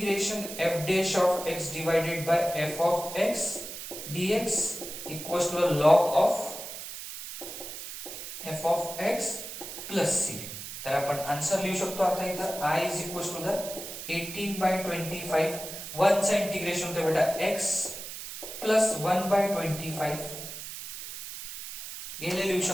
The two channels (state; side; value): noise; right; hiss, 9 dB below the sound